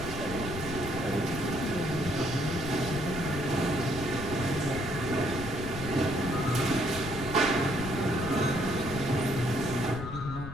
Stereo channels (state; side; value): noise; left; rumble, 8 dB below the sound